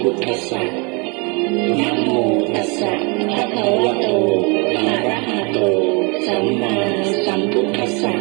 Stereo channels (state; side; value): quieter; left; 31.5 dB